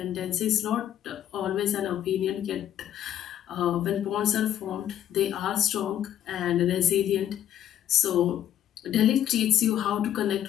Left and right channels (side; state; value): right; quieter; 11.0 dB